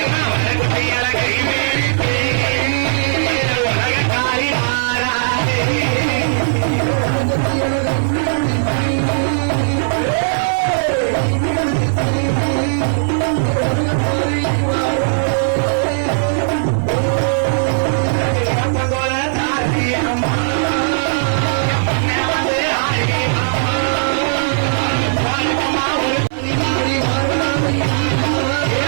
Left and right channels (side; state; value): left; silent; digital silence